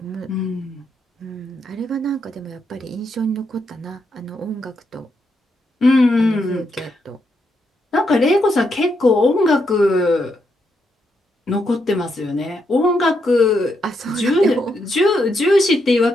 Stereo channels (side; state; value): both; normal; correlation 0.80